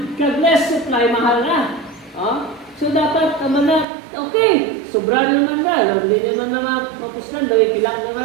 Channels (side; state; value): left; drops out; at 3.9 s